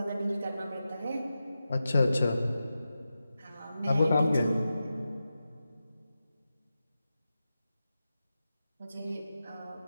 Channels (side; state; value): both; inverted; correlation -0.91